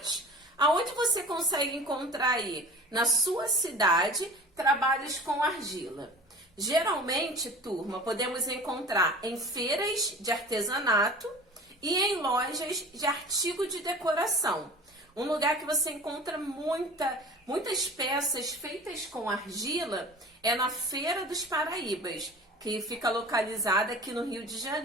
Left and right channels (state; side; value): normal; both; correlation 0.41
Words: aonde você consegue encontrar aí? Na sua cidade, trabalhos com argila. Geralmente, turma, podemos encontrar em feiras de artesanato e em lojas de artigo de decoração. Um lugar que você encontra muitas peças feitas com argila é na Feira dos Paraíbas, que fica localizada aqui no Rio de